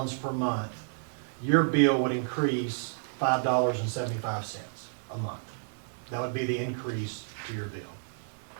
per month, your bill would increase $5.75 a month. That would be the increase to your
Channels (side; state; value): left; silent; 57 dB below the other